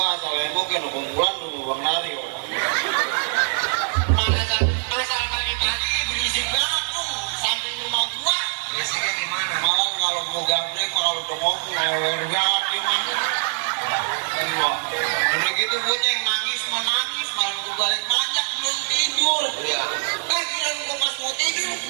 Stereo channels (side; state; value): left; silent; 63 dB below the other